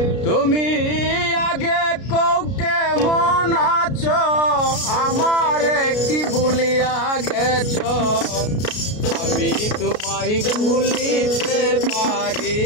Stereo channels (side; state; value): right; late; 33 ms